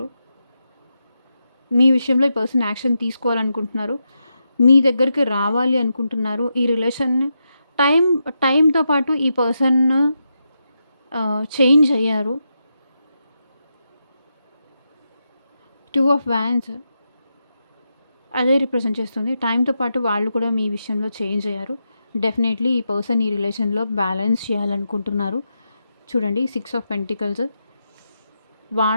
మీ విషయంలో ఈ పర్సన్ యాక్షన్ తీసుకోవాలనుకుంటున్నారు. మీ దగ్గరికి రావాలి అనుకుంటున్నారు. ఈ రిలేషన్ టైం టైంతో పాటు ఈ పర్సన్ చేంజ్ అయ్యారు. 2 ఆఫ్ వ్యాన్స్ అదే రిప్రజెంట్ చేస్తుంది. టైంతో పాటు వాళ్ళు కూడా మీ విషయంలో చేంజ్ అయ్యారు. డెఫినెట్లీ ఈ పర్సన్ ఈ రిలేషన్‌లో బ్యాలెన్స్ చేయాలనుకుంటున్నారు. చూడండి 6 ఆఫ్ పెంటికల్స్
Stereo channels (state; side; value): inverted; both; correlation -0.86